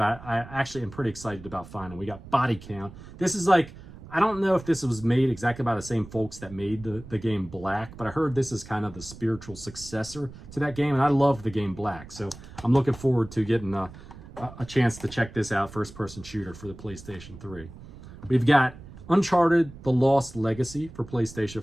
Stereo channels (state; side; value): noise; right; rumble, 17 dB below the sound